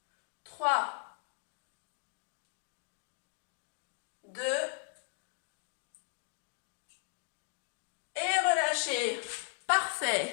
3. 2. Et relâchez.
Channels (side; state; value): right; silent; 53 dB below the other